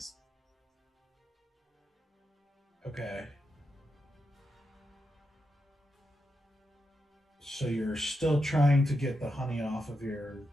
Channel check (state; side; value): normal; both; correlation 0.86